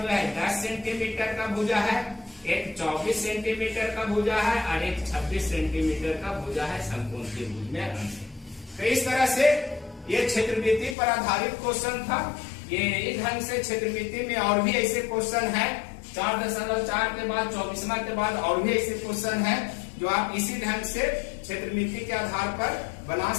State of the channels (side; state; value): right; drops out; at 11.0 s